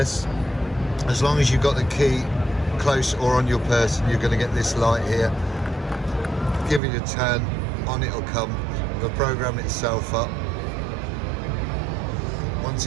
As long as you've got the key close or on your person, you're going to get this light here. Give it a turn, on it'll come. It'll program itself up. Once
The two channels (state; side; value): drops out; left; at 6.8 s